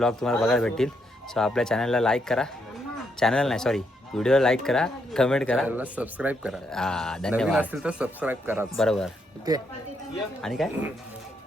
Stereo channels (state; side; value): normal; both; correlation 0.77